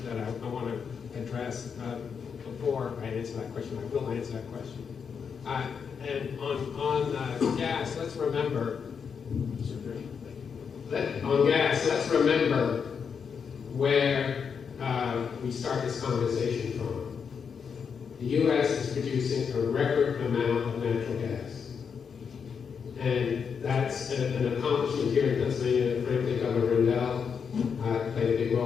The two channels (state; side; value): quieter; right; 6.5 dB